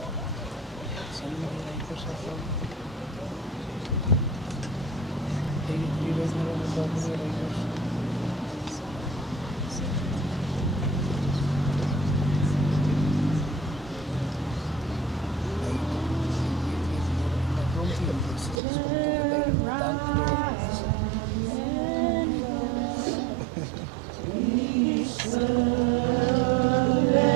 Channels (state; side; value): drops out; left; at 18.6 s